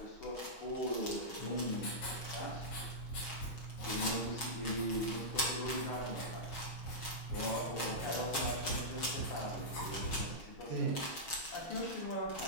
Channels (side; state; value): right; late; 6.3 ms